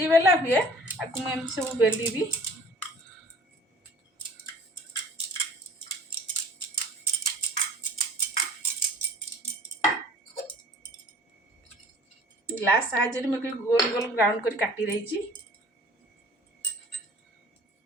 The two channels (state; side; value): normal; both; correlation 0.49